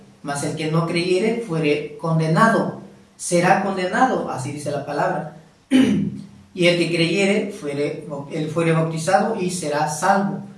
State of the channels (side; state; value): both; identical; correlation 1.00